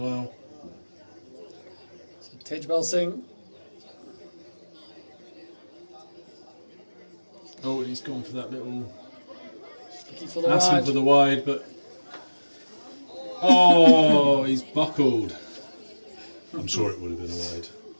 So Tejbal Singh. Oh, he's gone for that little... Looking for the asking wide. for the wide, but... Oh, he's buckled. I'm sure it would have been a wide.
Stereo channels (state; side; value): inverted; both; correlation -1.00